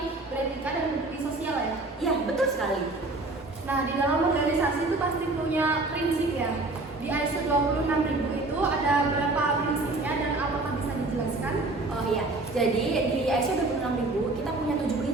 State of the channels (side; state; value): left; quieter; 3.1 dB